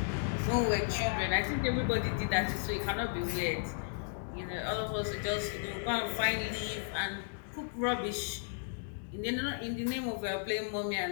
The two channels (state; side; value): silent; right; 55 dB below the other